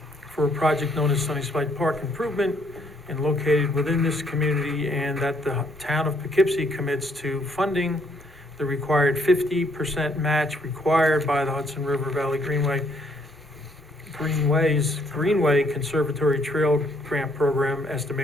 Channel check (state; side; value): normal; both; correlation 0.68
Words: for a project known as Sunnyside Park Improvement and located within this community, and that the town of Poughkeepsie commits to funding the required 50% match required by the Hudson River Valley Greenway Conservatory Trail Grant Program,